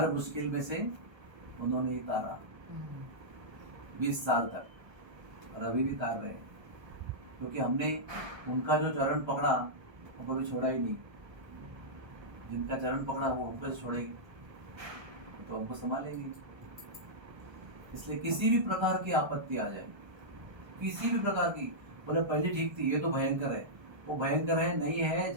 मुश्किल में से उन्होंने ही तारा 20 साल तक, और अभी भी तार रहे, क्योंकि हमने उनका जो चरण पकड़ा वो कभी छोड़ा ही नहीं। जिनका चरण पकड़ा वो हमको छोड़ेगी तो हमको संभालेंगे। इसलिए किसी भी प्रकार की आपत्ति आ जाए, किसी भी प्रकार की, बोले पहले ठीक थी, ये तो भयंकर है, वो भयंकर है नहीं है,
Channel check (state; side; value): late; left; 1.3 ms